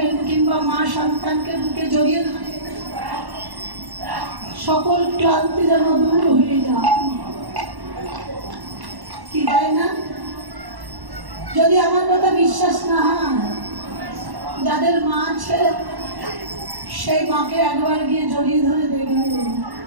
কিংবা মা সন্তানকে বুকে জড়িয়ে ধরেন, সকল ক্লান্তি যেন দূর হয়ে যায়, কি তাই না? যদি আমার কথা বিশ্বাস না হয়, যাদের মা আছে সেই মাকে একবার গিয়ে জড়িয়ে ধরে দেখবে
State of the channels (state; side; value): late; left; 1.1 ms